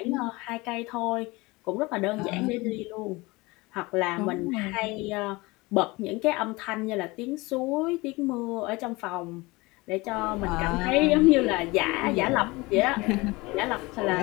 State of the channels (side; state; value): right; quieter; 23.1 dB